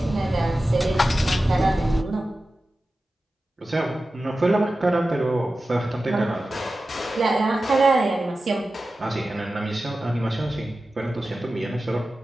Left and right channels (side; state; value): both; normal; correlation 0.94